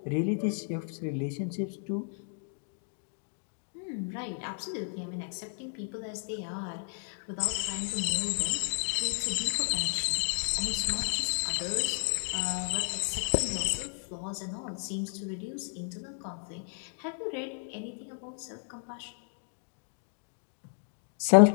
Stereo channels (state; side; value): silent; right; 56 dB below the other